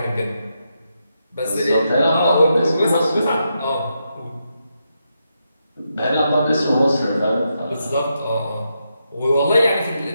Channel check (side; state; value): both; inverted; correlation -0.83